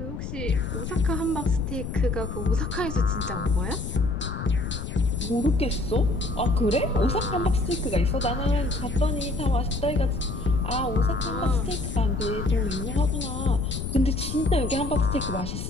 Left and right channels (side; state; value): left; noise; rumble, 6 dB below the sound